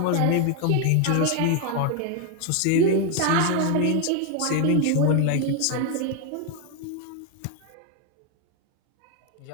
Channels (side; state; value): both; different; correlation 0.00